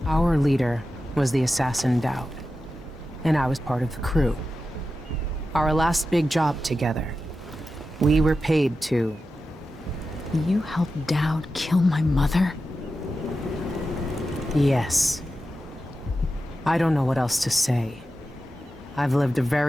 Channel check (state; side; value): normal; both; correlation 0.91